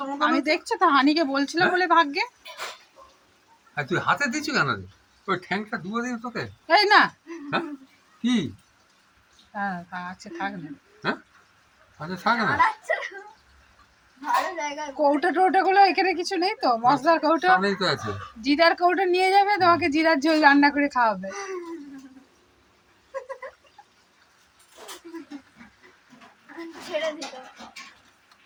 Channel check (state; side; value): identical; both; correlation 1.00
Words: আমাকে আমি দেখছো তো হানিকে বলছিলাম বলে ভাগ্যে। আর তুই হাতে দিচ্ছ কেন রে? ওই ঠ্যাংটা ডুবে দিবি তোকে। এই না হ্যাঁ কি? হ্যাঁ আছে থাক না। হ্যাঁ আচ্ছা থাক না, ভালো জায়গা। কৌটো টৌটো গুলো এখানে কিছু নেই তো, মশলার কৌটো সামনেই তো আছে। জিরার কৌটো নিয়ে যাবে, তোমাকে জিরার ঝোল রান্না করে খাওয়াবে। ছেড়ে দিল।